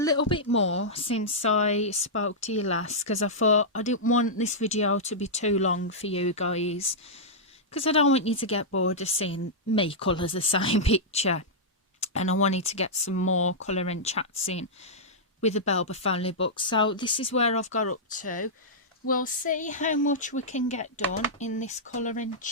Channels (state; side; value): normal; both; correlation -0.11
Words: bit more since I spoke to you last, because I thought I didn't want this video to be too long for you guys, because I don't want you to get bored of seeing me colour the same picture, and I wanted to get some more colouring chats in with the Belba family book. So this is where I've got up to. We'll see how much we can get done in this colouring